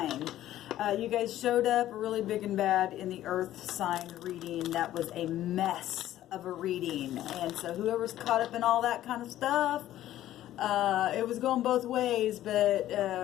You guys showed up really big and bad in the Earth sign reading. That was a mess of a reading. And so whoever's caught up in all that kind of stuff, it was going both ways, but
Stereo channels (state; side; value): quieter; right; 13.4 dB